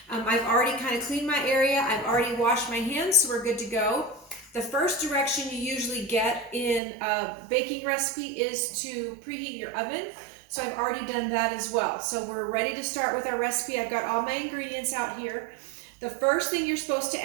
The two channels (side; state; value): left; drops out; at 6.8 s